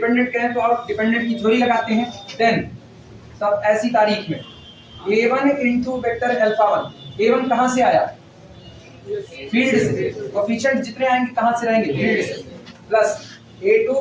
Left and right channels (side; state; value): both; identical; correlation 1.00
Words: कहें तो आप डिपेंडेंट की थ्योरी लगाते हैं, देन तब ऐसी तारीख में a1 into vector alpha 1, a1 कहां से आया, फील्ड से, कोफिशिएंट जितने आएंगे कहां से रहेंगे, फील्ड से, plus